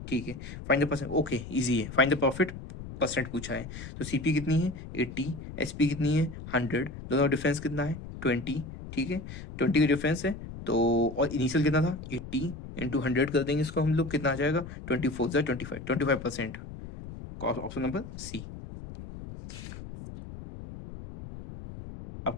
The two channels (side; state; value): left; noise; rumble, 11 dB below the sound